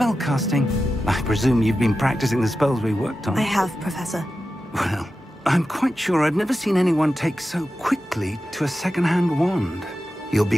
I presume you've been practicing the spells we worked on. I have, Professor. Well, I'm quite sure I've never seen anyone take so quickly to a second-hand wand. You'll be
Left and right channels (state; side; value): normal; both; correlation 0.92